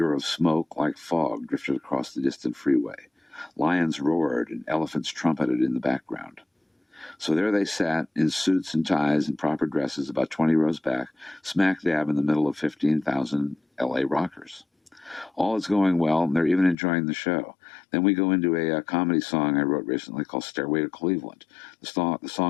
of smoke, like fog, drifted across the distant freeway. Lions roared and elephants trumpeted in the background. So there they sat, in suits and ties and proper dresses, about 20 rows back, smack dab in the middle of 15,000 L.A. rockers. All is going well, and they're even enjoying the show. Then we go into a comedy song I wrote recently called Stairway to Cleveland. The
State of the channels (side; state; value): right; drops out; at 16.8 s